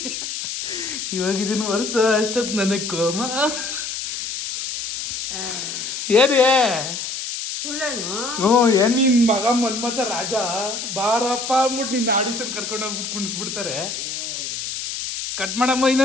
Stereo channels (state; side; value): noise; left; hiss, 5 dB below the sound